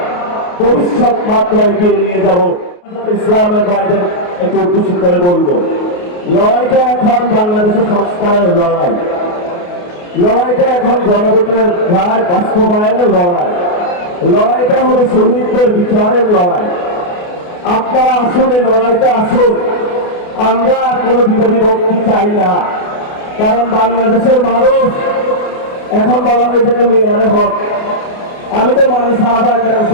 ভবিষ্যৎ মাত্রা এগিয়ে নিয়ে যাব। ইসলামের বাইরে একটু উদ্দেশ্য করে বলবো, লড়াইটা এখন বাংলাদেশের সংস্কারের লড়াই, লড়াইটা এখন গণভোটের রায় বাস্তবায়নের লড়াই, লড়াইটা হলো শহীদদের বিচারের লড়াই। আপনারা আসুন, এই লড়াইটা আসুন। আমরা কোনো বিভক্তি চাই না, কারণ বাংলাদেশের মানুষ এখন বলা হয়ে থাকে মেয়ারে হক। আমি তো মানে সাহাবা কেন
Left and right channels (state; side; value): late; right; 28 ms